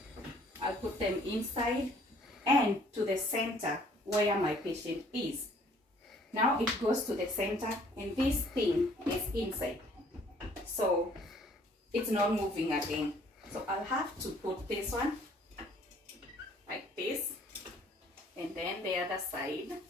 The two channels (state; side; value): normal; both; correlation 0.59